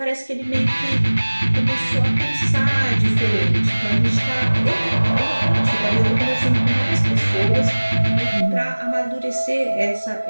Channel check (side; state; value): both; inverted; correlation -1.00